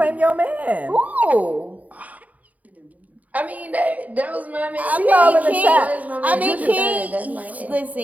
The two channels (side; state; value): left; late; 0.073 ms